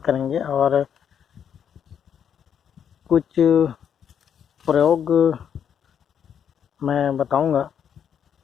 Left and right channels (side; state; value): right; quieter; 8.4 dB